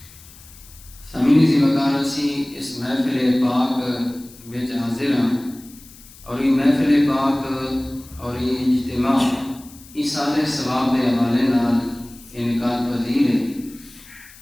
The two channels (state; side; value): noise; left; hiss, 21 dB below the sound